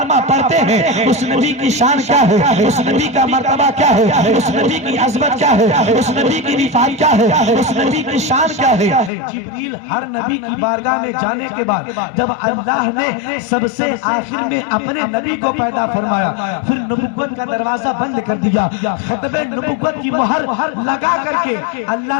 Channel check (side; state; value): right; drops out; at 9.1 s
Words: پڑھتے ہیں اس نبی کی شان کیا ہے، اس نبی کا مرتبہ کیا ہے، اس نبی کی عظمت کیا ہے، اس نبی کی رفعت کیا ہے، اس نبی کی شان کیا ہے۔ جبریل ہر نبی کی بارگاہ میں جانے کے بعد جب اللہ نے سب سے آخر میں اپنے نبی کو پیدا فرمایا، پھر نبوت کا دروازہ بند کر دیا، ختم نبوت کی مہر لگا کر کے